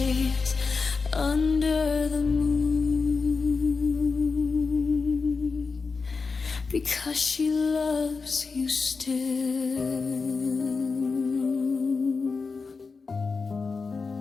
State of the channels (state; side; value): quieter; right; 4.6 dB